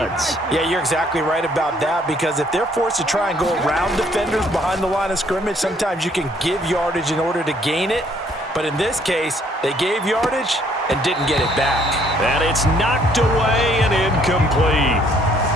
Yeah, you're exactly right about that, because if they're forced to try and go around defenders behind the line of scrimmage, sometimes you can give yardage in order to gain it. But in this case, they gave yardage and didn't get it back. And it's knocked away and incomplete.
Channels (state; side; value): normal; both; correlation 0.64